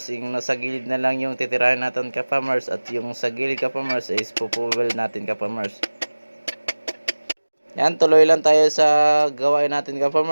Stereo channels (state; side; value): inverted; both; correlation -1.00